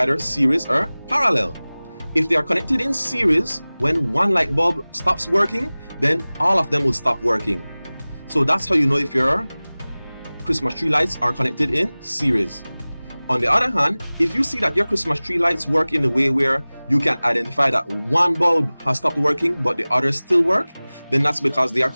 series or parallel. If they are connected in series, when one light bulb stops working, then all of them will stop working. So that's how you know if your Christmas tree lights are connected in series. On the other hand, if you see that your Christmas tree lights work in a way where you can identify that one bulb has stopped working but the others still work, then that's because they are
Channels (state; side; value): inverted; both; correlation -0.99